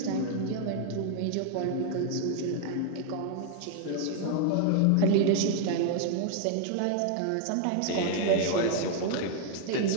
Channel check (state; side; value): different; both; correlation 0.00